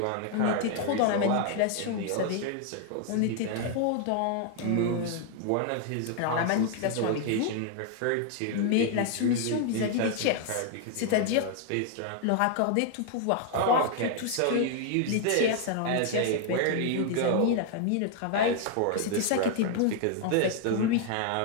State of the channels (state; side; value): different; both; correlation 0.00